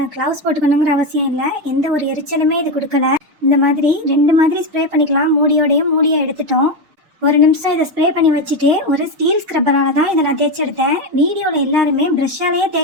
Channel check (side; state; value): left; late; 6.5 ms